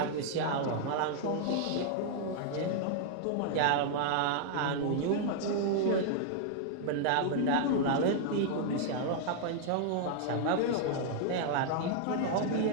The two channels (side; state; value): both; different; correlation -0.01